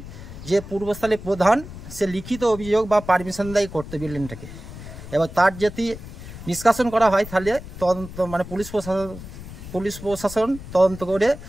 যে পূর্বস্থলী প্রধান সে লিখিত অভিযোগ বা পারমিশন দেয় করতে বিল্ডিংটাকে, এবার তার যদি নিষ্কাশন করা হয় তাহলে তদন্ত মানে পুলিশ প্রশাসন তদন্ত করে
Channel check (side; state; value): left; noise; rumble, 13 dB below the sound